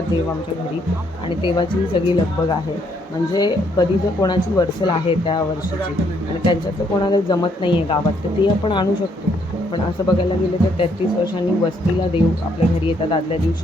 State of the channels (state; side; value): normal; both; correlation 0.71